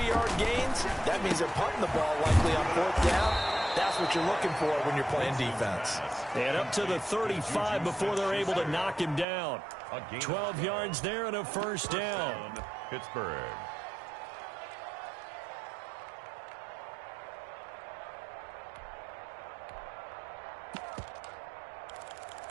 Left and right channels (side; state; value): left; drops out; at 9.2 s